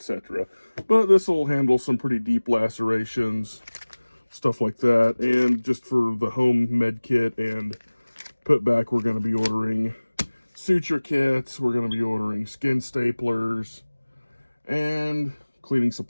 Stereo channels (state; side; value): inverted; both; correlation -1.00